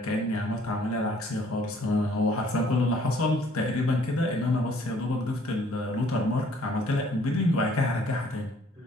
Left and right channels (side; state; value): both; normal; correlation 0.60